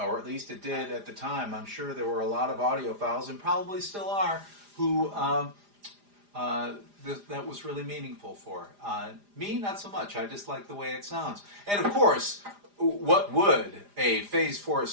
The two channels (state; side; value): late; left; 4.9 ms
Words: at least it did at the time. I'm sure there were a lot of audiophiles, and probably still are, who that was really meaningful for. Me, not so much. I just like the way it sounds. And of course, what would a Phase 4